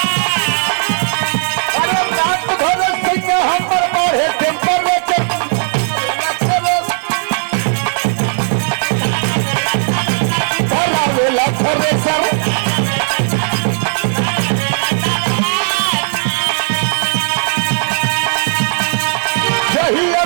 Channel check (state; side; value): silent; left; digital silence